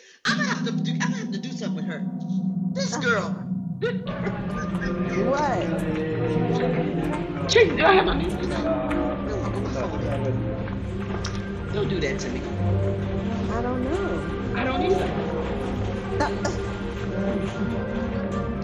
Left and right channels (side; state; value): both; identical; correlation 1.00